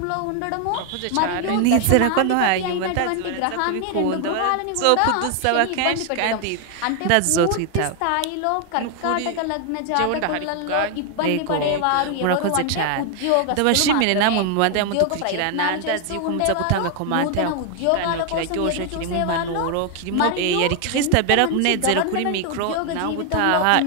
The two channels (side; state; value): both; different; correlation 0.00